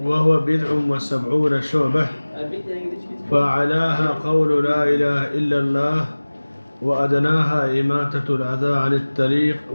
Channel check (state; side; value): inverted; both; correlation -1.00